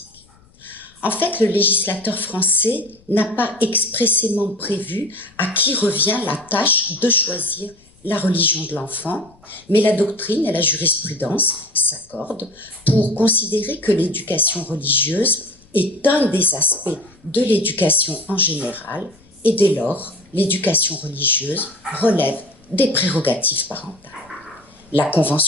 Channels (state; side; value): noise; left; rumble, 29 dB below the sound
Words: En fait, le législateur français n'a pas expressément prévu à qui revient la tâche de choisir la religion de l'enfant, mais la doctrine et la jurisprudence s'accordent pour considérer que l'éducation religieuse est un des aspects de l'éducation en général, et dès lors, l'éducation religieuse relève des prérogatives parentales. La